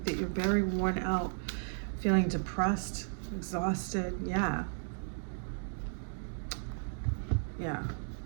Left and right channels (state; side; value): silent; left; digital silence